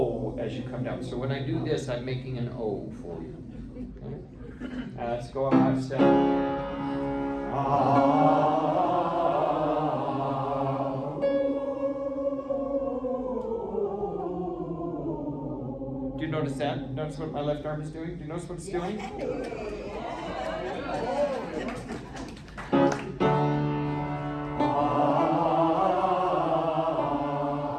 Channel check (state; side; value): identical; both; correlation 1.00